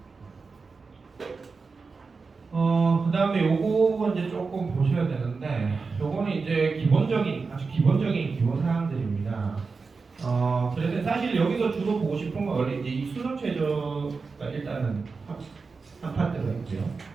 그 다음에 요거 이제 조금 보셔야 되는데, 요거는 이제 아주 기본적인 기본 사항들입니다. 그래서 사실 여기서 주로 보고 싶은 건 원래 이제 이 수능 최저가 일단은 한 파트가 있고요.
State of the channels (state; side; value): quieter; left; 4.5 dB